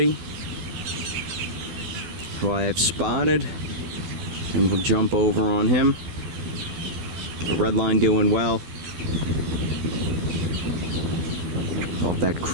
who I have spotted, and we'll jump over on him. The red line doing well. Off that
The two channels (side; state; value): left; late; 12 ms